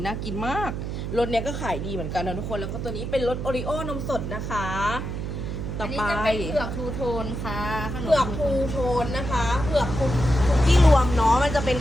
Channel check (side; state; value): right; noise; hum, 5 dB below the sound